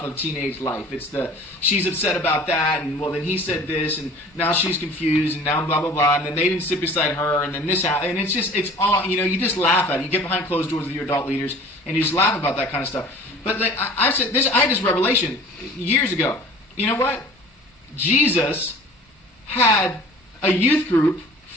of teenage life. It's she's upset about that, and well, then he said this, and now she's confused, and now blah blah blah, and then they didn't sit beside her, and then this happened, and it's all you just laugh at it. You get behind closed doors with your adult leaders, and you just laugh about that kind of stuff. But I said this. I had this revelation years ago. You know what? Jesus had a youth group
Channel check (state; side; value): normal; both; correlation 0.45